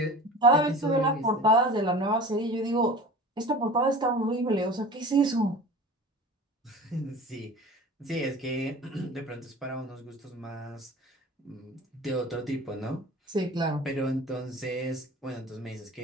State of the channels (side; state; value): both; normal; correlation 0.38